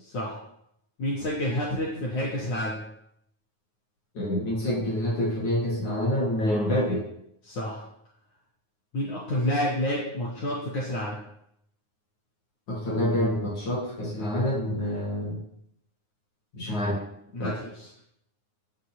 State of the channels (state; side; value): late; right; 9.5 ms